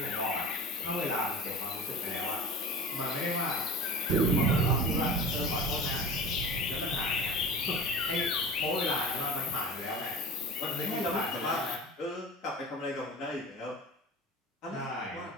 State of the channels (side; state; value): both; normal; correlation 0.36